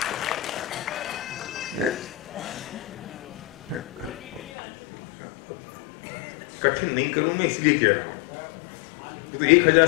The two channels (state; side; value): drops out; right; at 4.5 s